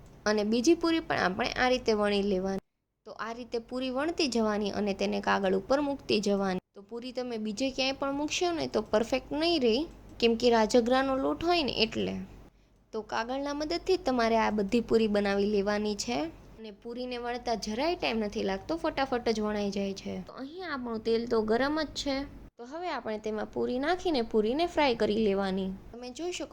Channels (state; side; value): identical; both; correlation 1.00